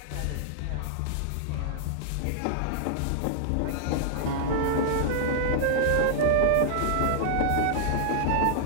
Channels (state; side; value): different; both; correlation -0.01